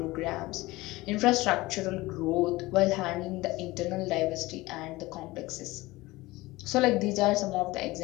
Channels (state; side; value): quieter; right; 20.1 dB